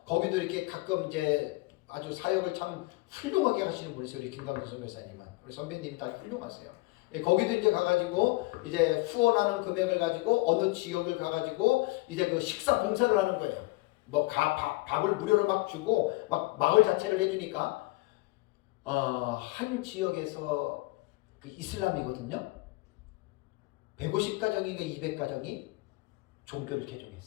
거기도 이렇게 가끔 이제 아주 사역을 참 훌륭하게 하시는 분이세요. 우리 김광규 선교사님은. 우리 선배님 다 훌륭하세요. 거기도 이제 가가지고 이제 후원하는 금액을 가지고 어느 지역을 가가지고 이제 그 식사 봉사를 하는 거예요. 뭐 밥을 무료로 막 주고 막 마을 자체를 해주니까 한 지역에서 그 이슬람이거든요. 150가정인가 200가정이 종교를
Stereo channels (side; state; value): right; quieter; 22.2 dB